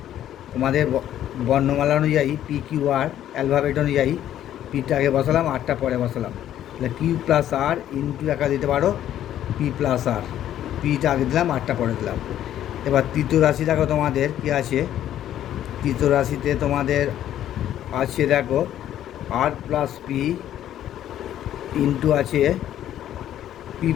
তোমাদের বর্ণমালা অনুযায়ী পি কিউ আর, অ্যালফাবেট অনুযায়ী পিটা আগে বসালাম, আরটা পরে বসালাম, তাহলে কিউ প্লাস আর ইন্টু একা দিতে পারো পি প্লাস আর, পিটা আগে দিলাম, আরটা পরে দিলাম। এবার তৃতীয় রাশি দেখো তোমাদের কী আছে, তৃতীয় রাশিতে তোমাদের আছে দেখো আর প্লাস পি ইন্টু আছে P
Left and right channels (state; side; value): quieter; right; 11.5 dB